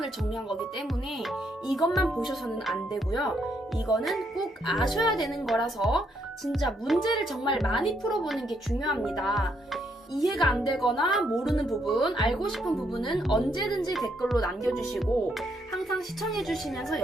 정리한 거기 때문에 이것만 보셔서는 안 되고요. 이거는 꼭 아셔야 되는 거라서 진짜 문제를 정말 많이 풀어보는 게 중요합니다. 이해가 안 되거나 모르는 부분, 알고 싶은 부분은 언제든지 댓글로 남겨주시고 항상 시청해주시면서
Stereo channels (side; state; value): both; normal; correlation 0.74